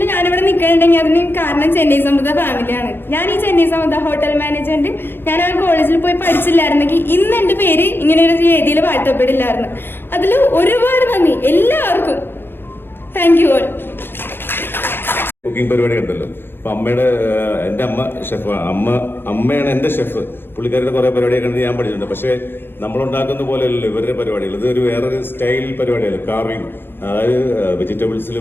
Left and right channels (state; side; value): late; right; 0.099 ms